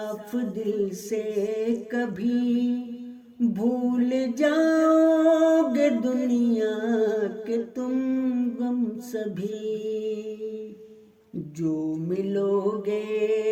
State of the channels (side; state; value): both; identical; correlation 1.00